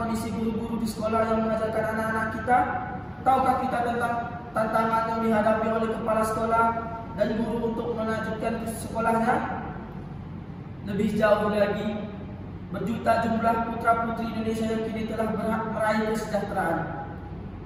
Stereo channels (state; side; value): identical; both; correlation 1.00